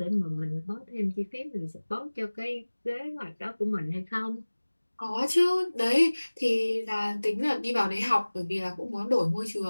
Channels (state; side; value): inverted; both; correlation -1.00